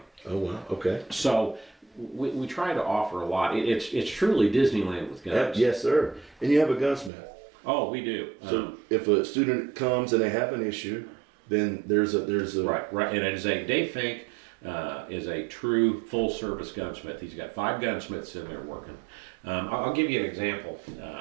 Oh, wow. Okay. So we try to offer a lot. It's truly Disneyland with guns. Yes, sir. And you have a gunsmith. Oh, we do. So if a student comes and they have an issue, then there's a right. And it is Dave Fink is a true full service gunsmith. He's got 5 gunsmiths in there working. I'll give you an example.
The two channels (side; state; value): left; drops out; at 7.1 s